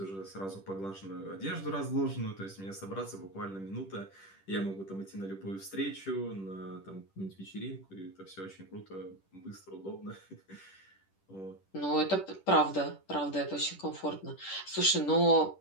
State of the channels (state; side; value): late; right; 10 ms